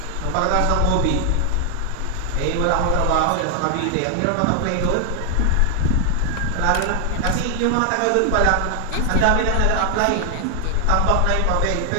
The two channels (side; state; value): both; different; correlation 0.00